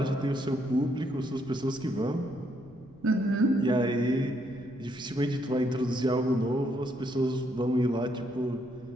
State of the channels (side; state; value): right; noise; rumble, 25 dB below the sound